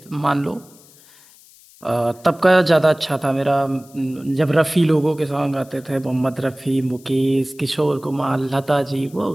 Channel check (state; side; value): noise; left; hiss, 26 dB below the sound